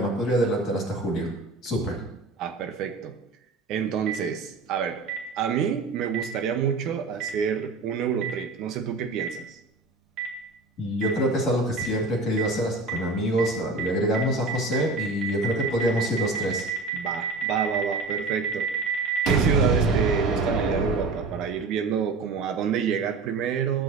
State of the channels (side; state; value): left; quieter; 3.5 dB